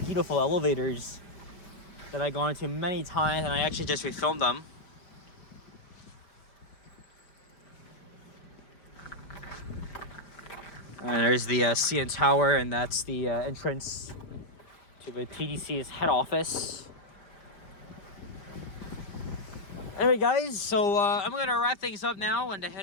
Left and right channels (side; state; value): right; late; 5.0 ms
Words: beautiful elevators that I've gone to many times, and I actually just refilmed them. And there's the CN Tower, and that's the entrance to the TDC's head office. Anyway, guys, so I'm going to wrap things up now and